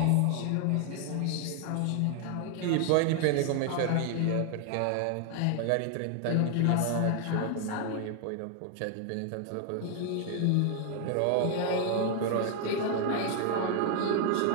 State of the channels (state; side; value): different; both; correlation 0.00